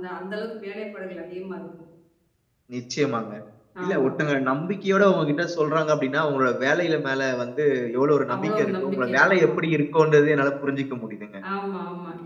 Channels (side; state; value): both; identical; correlation 1.00